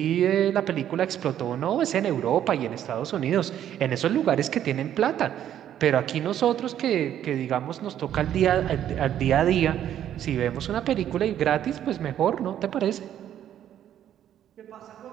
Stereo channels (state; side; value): quieter; left; 10.7 dB